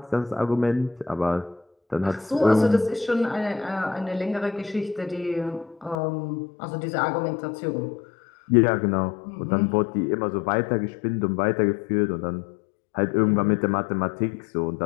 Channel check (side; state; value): right; drops out; at 6.0 s